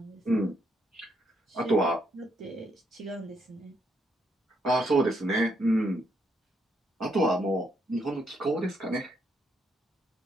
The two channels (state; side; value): normal; both; correlation 0.76